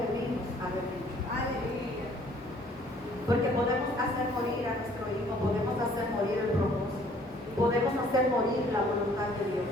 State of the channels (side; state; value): both; normal; correlation 0.58